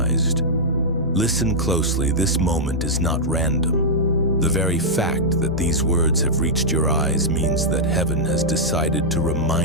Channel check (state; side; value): noise; right; rumble, 21 dB below the sound